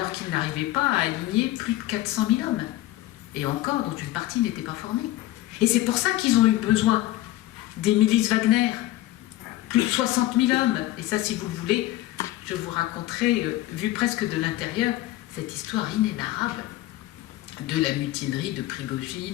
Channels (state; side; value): quieter; right; 16.0 dB